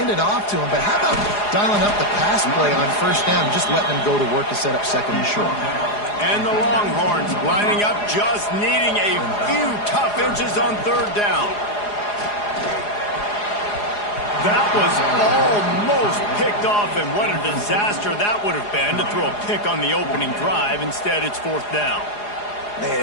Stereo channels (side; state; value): right; late; 4.8 ms